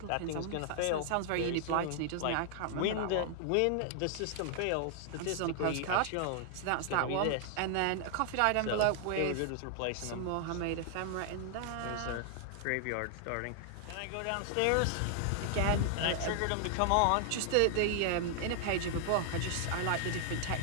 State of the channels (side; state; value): both; different; correlation 0.00